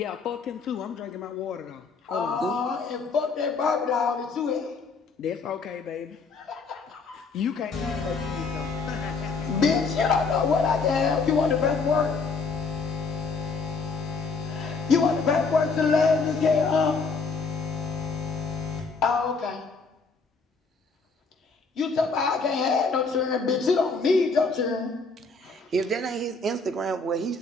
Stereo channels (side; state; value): right; quieter; 4.3 dB